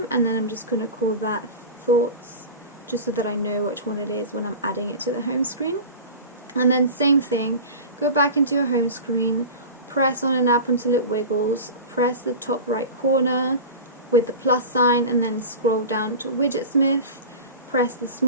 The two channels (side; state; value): both; inverted; correlation -0.31